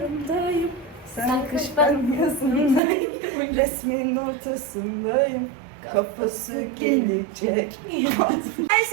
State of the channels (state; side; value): drops out; left; at 2.8 s